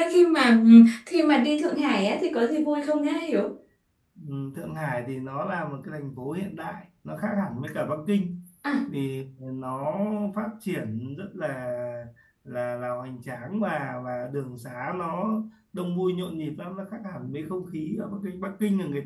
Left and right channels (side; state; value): both; identical; correlation 1.00